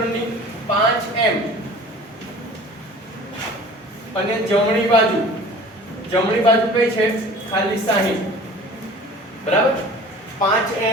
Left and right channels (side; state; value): both; normal; correlation 0.44